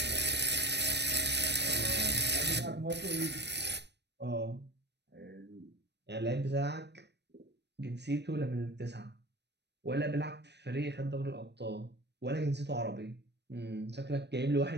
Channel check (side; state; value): left; late; 0.50 ms